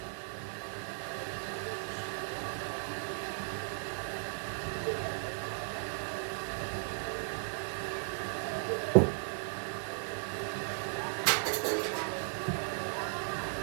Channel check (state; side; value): silent; left; digital silence